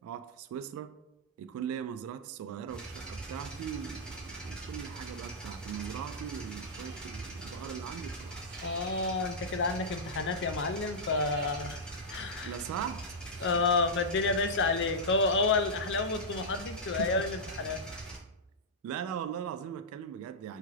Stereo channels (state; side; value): normal; both; correlation -0.09